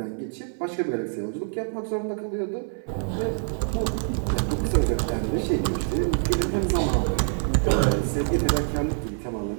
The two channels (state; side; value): silent; left; digital silence